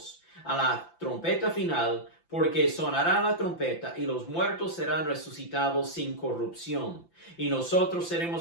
a la trompeta final, porque sonará la trompeta y los muertos serán resucitados sin corrupción, y nosotros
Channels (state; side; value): late; right; 5.9 ms